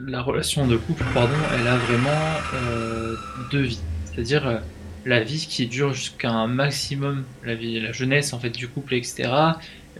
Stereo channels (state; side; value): identical; both; correlation 1.00